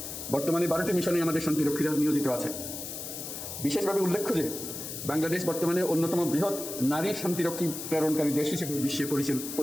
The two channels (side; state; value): left; noise; hiss, 8 dB below the sound